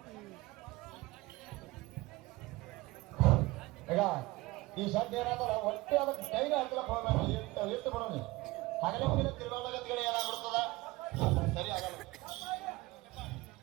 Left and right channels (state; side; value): quieter; left; 20.9 dB